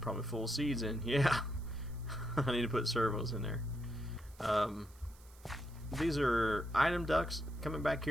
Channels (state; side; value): noise; right; hiss, 26 dB below the sound